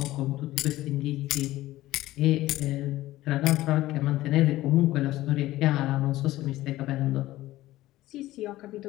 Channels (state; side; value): quieter; right; 16.2 dB